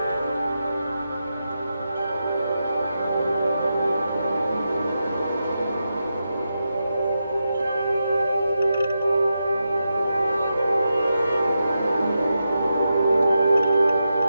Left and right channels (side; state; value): both; inverted; correlation -0.88